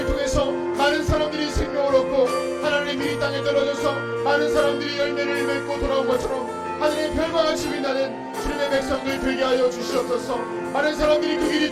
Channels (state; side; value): identical; both; correlation 1.00